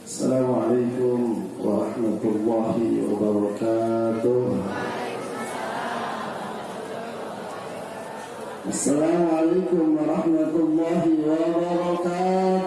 Assalamualaikum warahmatullahi wabarakatuh. Assalamualaikum warahmatullahi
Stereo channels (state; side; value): identical; both; correlation 1.00